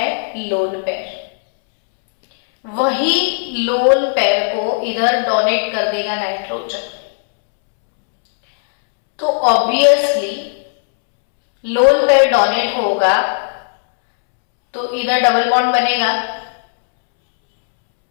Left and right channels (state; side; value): silent; right; 69 dB below the other